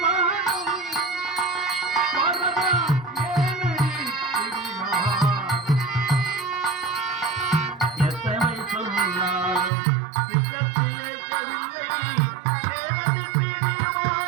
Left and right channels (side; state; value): left; drops out; at 9.7 s